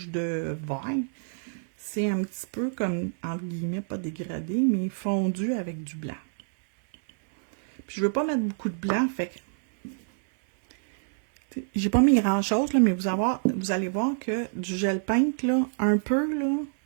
de vert. C'est un petit peu comme, entre guillemets, pas dégradé, mais fondu avec du blanc. Puis je veux pas mettre beaucoup de blanc, fait que j'ai pas mis grand-chose, là, mais vous allez voir que du gel peint, là, un peu, là,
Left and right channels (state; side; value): silent; left; 60 dB below the other